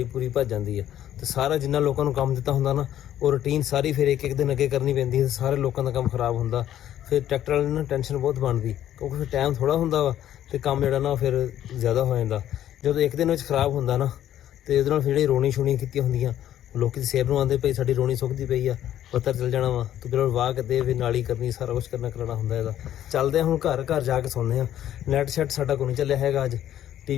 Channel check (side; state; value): right; quieter; 11.6 dB